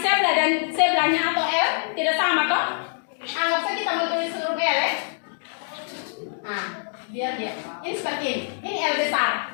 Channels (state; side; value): silent; right; digital silence